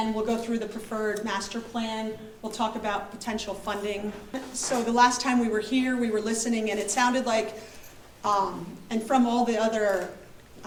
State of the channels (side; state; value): both; identical; correlation 1.00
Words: we'll go through the preferred master plan. We'll talk about potential funding. So the last time we were here, we were listening, and it sounded like, and from all the other,